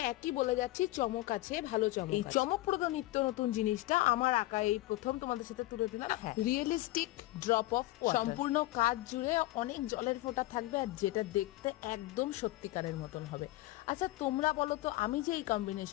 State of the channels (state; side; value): quieter; right; 17.7 dB